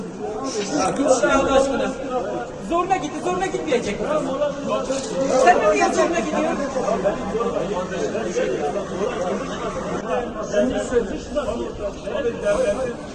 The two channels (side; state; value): both; identical; correlation 1.00